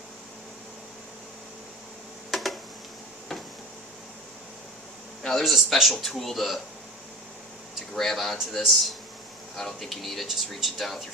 Now there's a special tool to grab onto this. I don't think you need it. Just reach it down with your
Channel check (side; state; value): both; normal; correlation 0.33